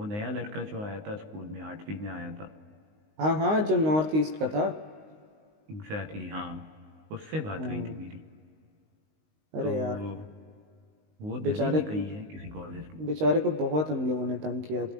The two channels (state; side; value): late; left; 19 ms